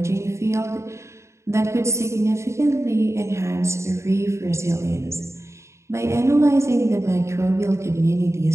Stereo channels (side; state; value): left; late; 0.14 ms